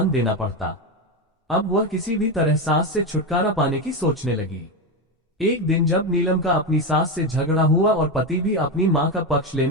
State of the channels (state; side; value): normal; both; correlation 0.13